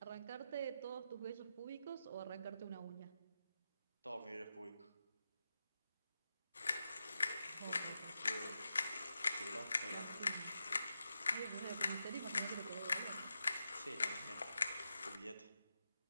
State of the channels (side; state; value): both; inverted; correlation -0.87